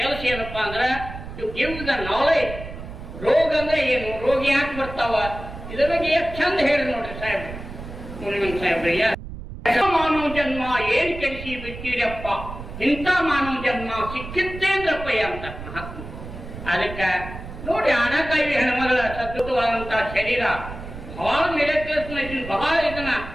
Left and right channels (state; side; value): noise; right; rumble, 11 dB below the sound